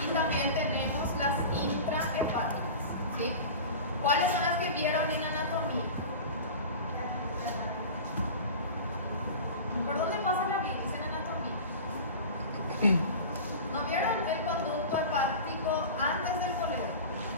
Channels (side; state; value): both; inverted; correlation -0.34